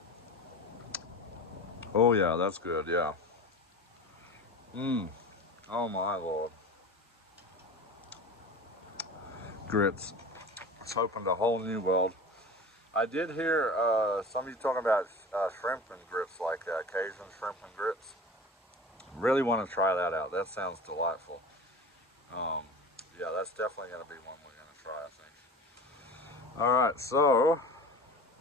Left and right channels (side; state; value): both; normal; correlation 0.34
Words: Oh yeah, that's good, yeah. Oh my lord. Grits. It's opened a whole new world. I did hear some of you talking about shrimp and grits, like Cajun shrimp and grits. Really want to try that out. That sounds delightful. Yeah, that's definitely going to be one we're going to try, I think. Alright, so